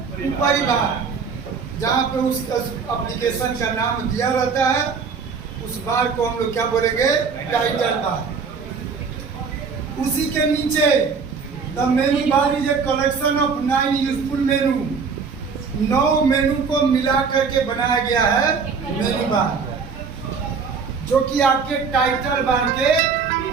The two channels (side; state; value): left; quieter; 5.5 dB